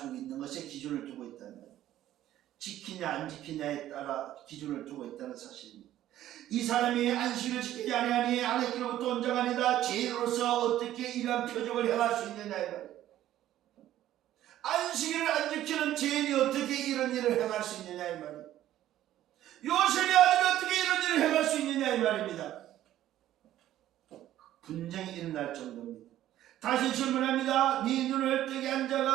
있는 것에 기준을 두고 있다는 거예요. 지키냐 안 지키냐에 따라 기준을 두고 있다는 사실입니다. 이 사람이 안식일을 지키지 아니하니 하나님께로부터 온 자가 아니다. 죄인으로서 어떻게 이러한 표적을 행할 수 있느냐 이 말이에요. 안식일을 안 지키는 죄인이 어떻게 이런 일을 행할 수 있느냐 이 말이에요. 요셉의 아들이 어떻게 이런 일을 행할 수 있느냐 이 말입니다. 분쟁이 일어날 정도입니다. 다시 질문합니다. 네 눈을 뜨게 한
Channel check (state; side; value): quieter; left; 13.0 dB